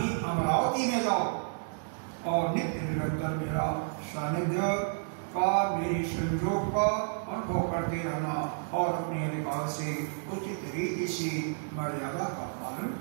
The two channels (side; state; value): left; silent; digital silence